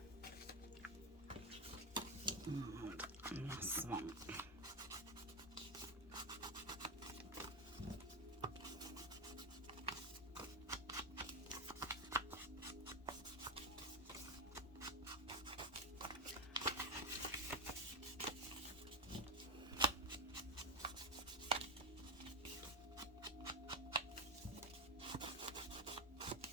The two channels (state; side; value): normal; both; correlation 0.12